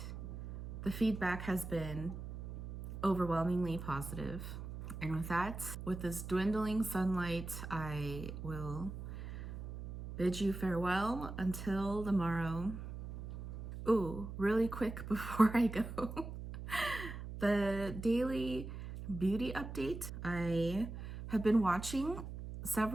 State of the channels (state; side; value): noise; right; hum, 9 dB below the sound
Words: the feedback has been overwhelmingly positive. And with that, with this dwindling sunlight, I will bid you farewell until tomorrow. Ooh, really quick before I go, the daily beauty update. I have been watching